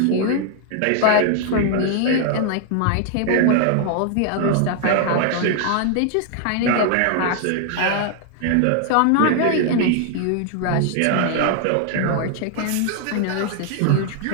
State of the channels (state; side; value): different; both; correlation 0.00